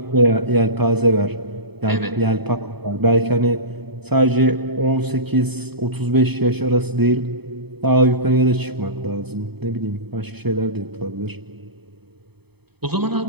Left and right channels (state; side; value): late; left; 0.98 ms